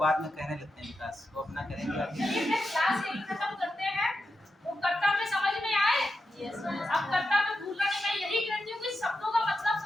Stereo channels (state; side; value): normal; both; correlation 0.88